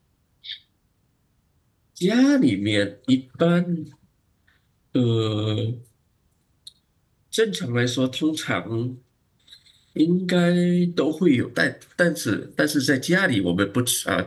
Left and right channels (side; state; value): both; identical; correlation 1.00